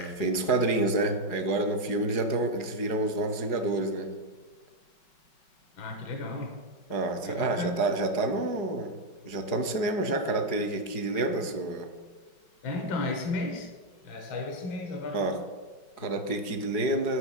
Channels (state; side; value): late; right; 5.3 ms